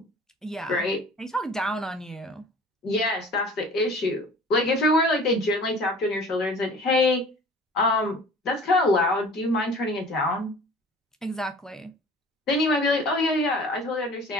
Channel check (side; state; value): both; normal; correlation 0.45